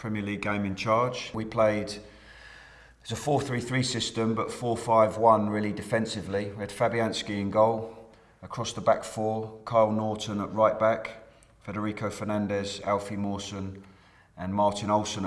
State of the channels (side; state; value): both; identical; correlation 1.00